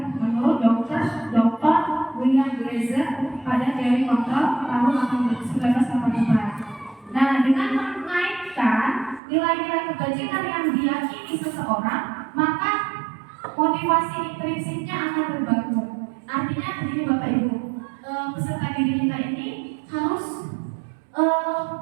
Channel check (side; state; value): left; drops out; at 9.2 s